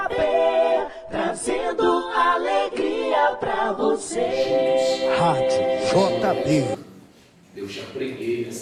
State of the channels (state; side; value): identical; both; correlation 1.00